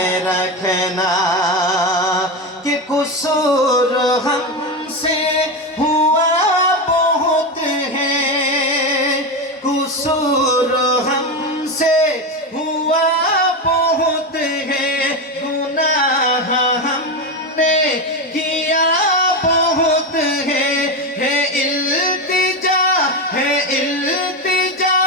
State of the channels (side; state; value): both; normal; correlation 0.15